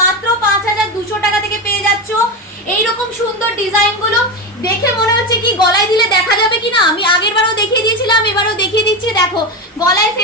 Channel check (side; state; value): both; normal; correlation 0.17